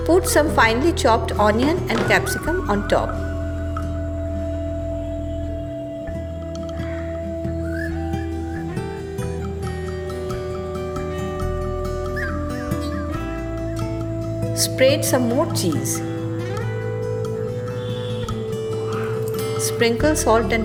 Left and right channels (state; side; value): identical; both; correlation 1.00